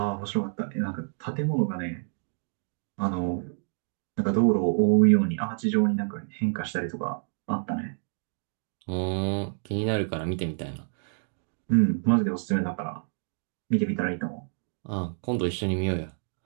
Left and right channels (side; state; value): left; silent; 59 dB below the other